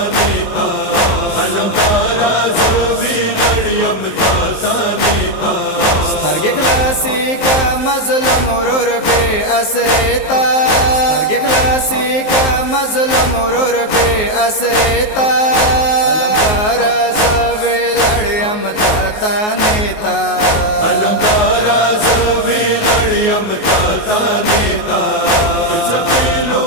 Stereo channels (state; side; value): late; right; 19 ms